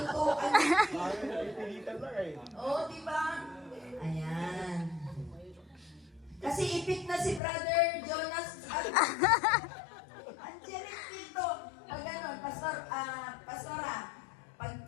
Oo, di ba? Ayan. Kasi ipit na si Brother Jonas at Angelic dito. Pag ganon, Pastora,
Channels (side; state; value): right; drops out; at 7.4 s